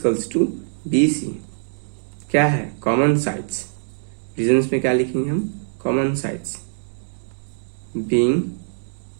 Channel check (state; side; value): silent; left; digital silence